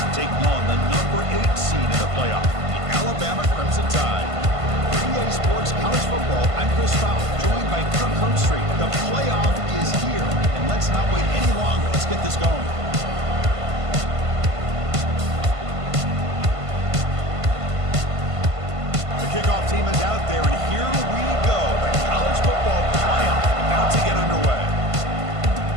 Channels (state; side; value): late; left; 1.5 ms